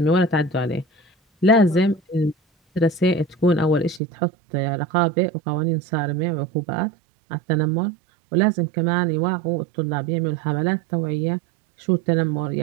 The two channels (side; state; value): left; drops out; at 4.0 s